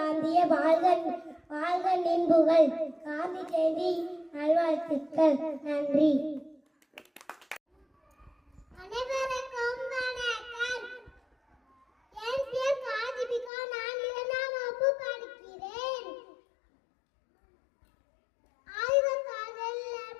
வாழ்க வாழ்க நின்புகள். காந்தி ஜெயந்தி நல்வாழ்த்துக்கள். நன்றி. அனைவருக்கும் வணக்கம். என் பேர் காதிபிகா. நான் 2ஆம் வகுப்பு படிக்கிறேன். ஆய்வகத்தில்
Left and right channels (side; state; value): right; drops out; at 13.5 s